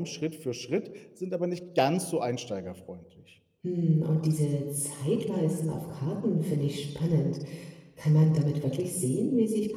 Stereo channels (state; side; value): identical; both; correlation 1.00